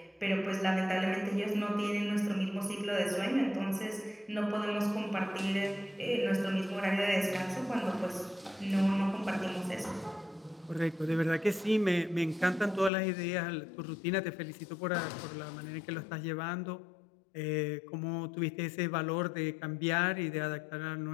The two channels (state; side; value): drops out; right; at 12.9 s